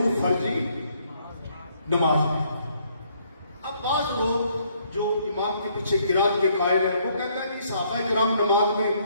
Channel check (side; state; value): both; inverted; correlation -0.68